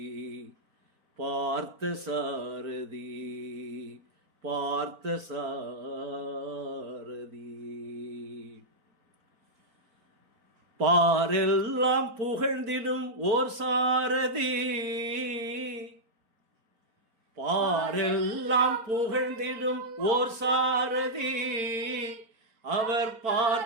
பார்த்த சாரதி பார்த்த சாரதி பாரெல்லாம் புகழ்ந்திடும் ஓர் சாரதி பாரெல்லாம் புகழ்ந்திடும் ஓர் சாரதி அவர்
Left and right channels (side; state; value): left; late; 4.5 ms